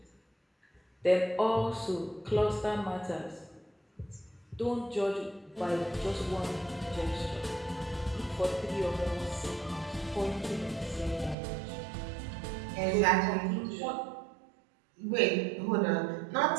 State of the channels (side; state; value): left; drops out; at 11.4 s